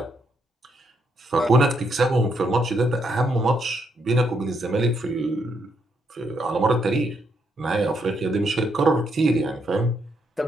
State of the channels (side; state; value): both; normal; correlation 0.76